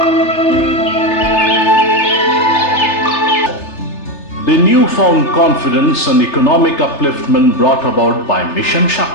The newfound confidence and economic upliftment brought about by Mission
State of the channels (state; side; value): late; right; 3.3 ms